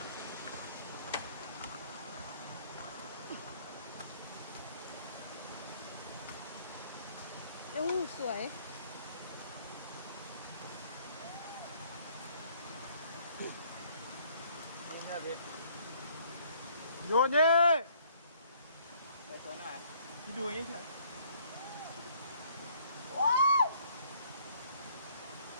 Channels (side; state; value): both; inverted; correlation -0.62